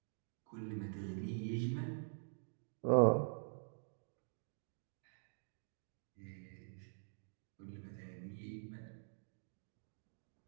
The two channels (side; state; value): left; silent; digital silence